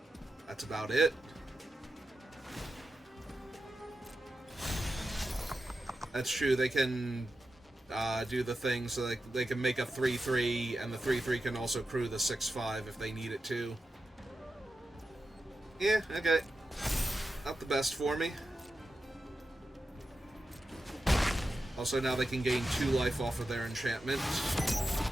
that's about it. That's true, they can do the thing so they can make a 3/3, and the 3/3 can also crew the 6/5 if they need it to. Yeah, okay. Not the best for me. Also, now they can gain 2 life off of their enchantment.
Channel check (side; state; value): both; normal; correlation 0.90